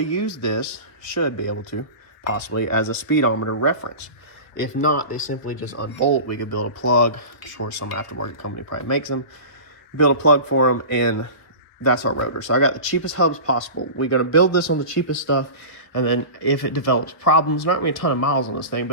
use this, should be able to, possibly, as a speedometer reference. If not, they simply just unbolt. We could build a plug. I'm sure some aftermarket company probably makes them. Build a plug for them, and that's our rotor. So I got the cheapest hubs possible. We're going to build this on the cheapest stuff, and then if it develops problems, not going to be a ton of miles on this thing, but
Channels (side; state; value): right; late; 1.4 ms